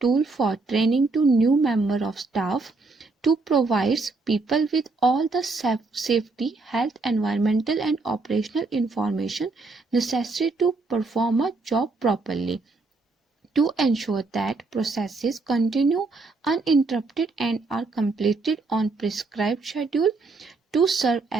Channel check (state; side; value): quieter; left; 3.7 dB